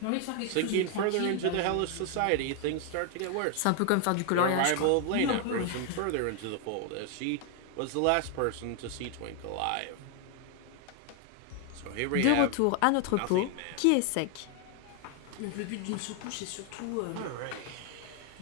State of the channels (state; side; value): different; both; correlation 0.00